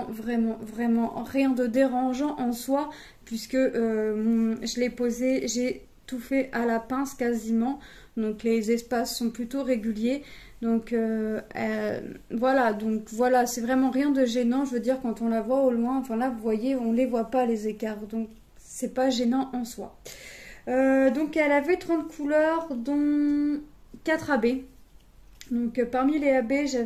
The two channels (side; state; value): both; identical; correlation 1.00